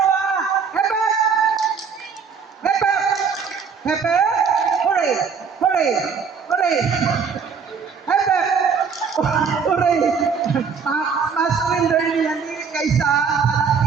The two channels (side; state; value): left; quieter; 6.0 dB